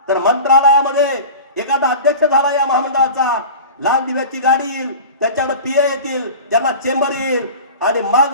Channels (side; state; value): both; inverted; correlation -0.35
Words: तर मंत्रालयामध्ये एखादा अध्यक्ष झाला या महामंडळाचा, लाल दिव्याची गाडी येईल, त्याच्याकडे पीए येतील, त्यांना चेंबर येईल आणि